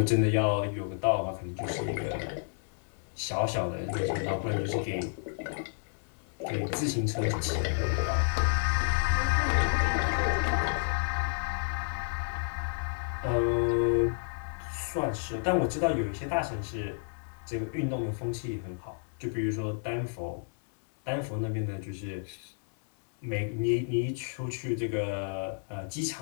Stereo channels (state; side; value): silent; right; 57 dB below the other